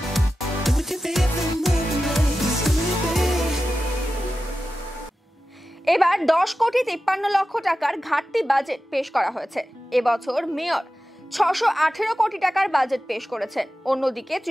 এবার 10 কোটি 53 লক্ষ টাকার ঘাটতি বাজেট পেশ করা হয়েছে। এবছর মেয়র 618 কোটি টাকার বাজেট পেশ করেছেন। অন্যদিকে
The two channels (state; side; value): normal; both; correlation 0.93